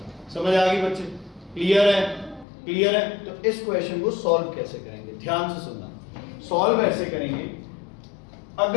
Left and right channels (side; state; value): right; drops out; at 2.5 s